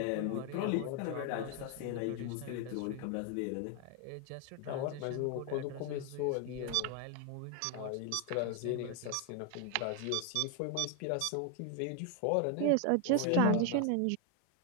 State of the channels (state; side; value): different; both; correlation 0.01